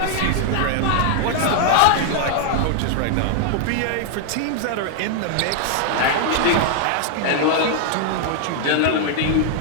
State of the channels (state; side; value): different; both; correlation -0.01